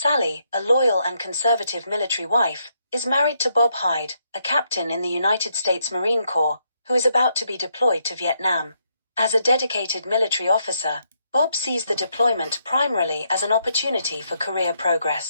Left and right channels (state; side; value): inverted; both; correlation -0.77